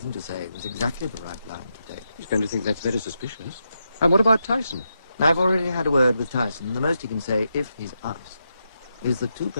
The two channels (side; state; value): both; inverted; correlation -0.84